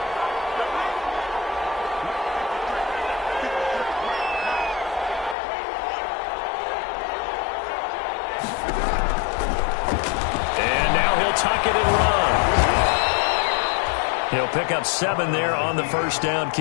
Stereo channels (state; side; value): drops out; right; at 5.4 s